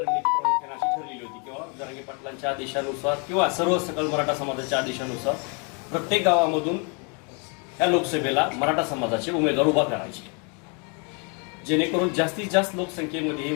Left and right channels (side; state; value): right; quieter; 35.2 dB